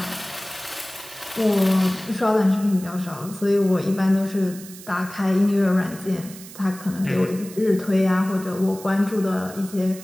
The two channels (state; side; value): noise; right; hiss, 16 dB below the sound